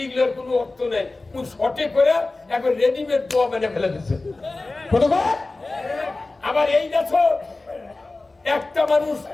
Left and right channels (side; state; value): right; quieter; 3.2 dB